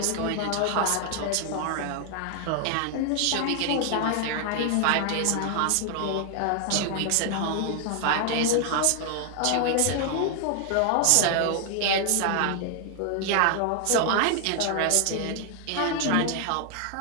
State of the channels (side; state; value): both; different; correlation 0.00